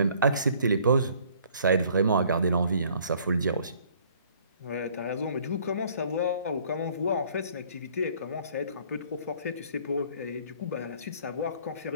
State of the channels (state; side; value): inverted; both; correlation -0.58